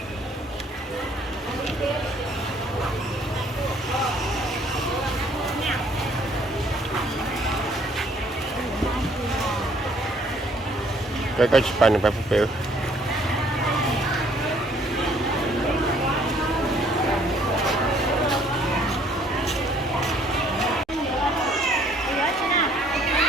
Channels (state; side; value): normal; both; correlation 0.62